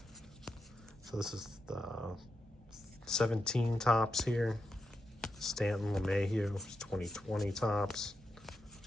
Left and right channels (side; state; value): both; normal; correlation 0.86